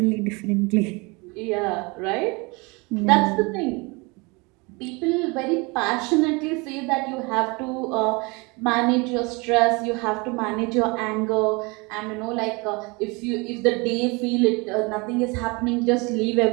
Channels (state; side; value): quieter; left; 27.4 dB